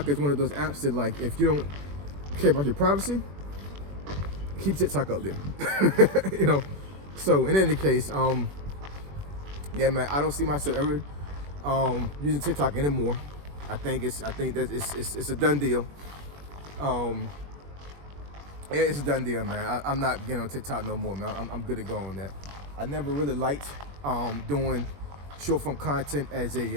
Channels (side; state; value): left; late; 21 ms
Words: is one of those apps that, like, if you don't care about your privacy, keep TikTok up there. So in any case, yeah, man, I don't see myself ever using TikTok anymore. I think it's a done deal. Yeah, it's a done deal, man. I'm not getting on TikTok no more, man. I'm good to go on that. I never really liked doing short form content as